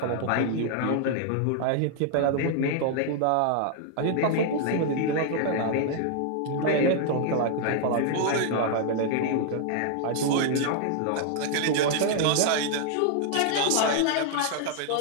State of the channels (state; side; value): different; both; correlation -0.01